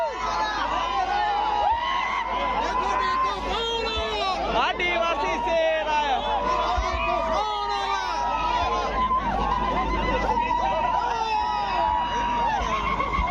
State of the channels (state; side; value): identical; both; correlation 1.00